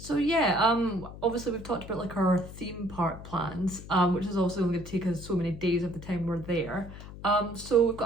yeah, obviously we've talked about like our theme park plans, which is also going to take us so many days of the time we're there. So we've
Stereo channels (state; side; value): noise; left; hum, 14 dB below the sound